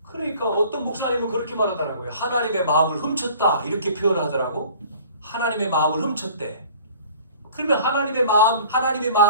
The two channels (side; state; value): both; inverted; correlation -0.49